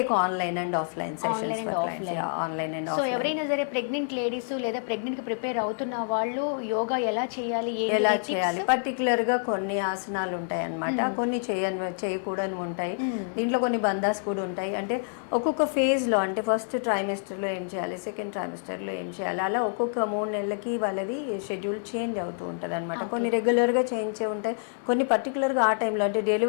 online and offline sessions for clients. Online and offline. So ఎవరైనా సరే ప్రెగ్నెంట్ లేడీస్ లేదా ప్రెగ్నెంట్ కి ప్రిపేర్ అవుతున్న వాళ్ళు యోగా ఎలా చేయాలి, పర్టికులర్ గా కొన్ని ఆసనాలు ఉంటాయి అన్నమాట. కొన్ని చేయకూడని ఉంటాయి. దీంట్లో కొన్ని బంధాస్ కూడా ఉంటాయి. అంటే ఒక్కొక్క ఫేజ్ లో అంటే ఫస్ట్ ట్రైమెస్టర్ లో ఏం చేయాలి, సెకండ్ ట్రైమెస్టర్ లో ఏం చేయాలి, అలా ఒక్కొక్క 3 నెలలకి వాళ్ళది షెడ్యూల్ చేంజ్ అవుతూ ఉంటుంది అనమాట. కొన్ని రెగ్యులర్ గా చేయించే ఉంటాయి, కొన్ని పర్టికులర్ గా ఆ టైంలో అంటే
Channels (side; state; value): right; silent; 58 dB below the other